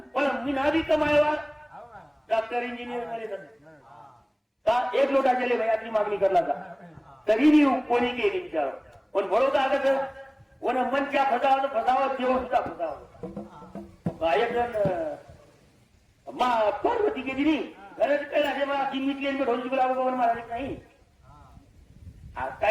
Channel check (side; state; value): both; identical; correlation 1.00